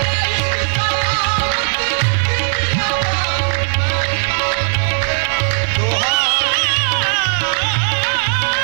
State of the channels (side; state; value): left; silent; digital silence